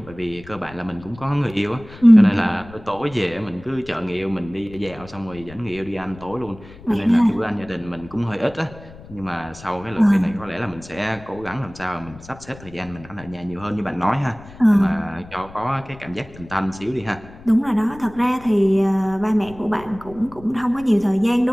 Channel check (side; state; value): left; noise; rumble, 19 dB below the sound